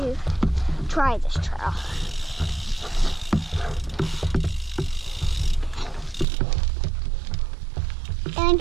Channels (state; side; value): drops out; left; at 6.2 s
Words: try this trail.